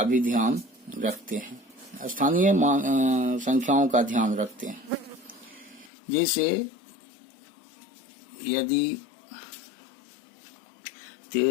भी ध्यान रखते हैं, स्थानीय संख्याओं का ध्यान रखते हैं। जैसे यदि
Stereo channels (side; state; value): right; drops out; at 5.9 s